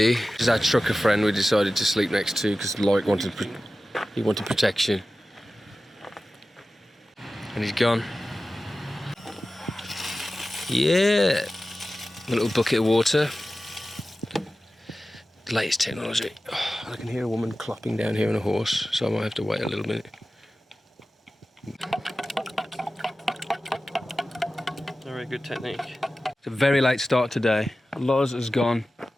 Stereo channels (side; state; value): both; normal; correlation 0.95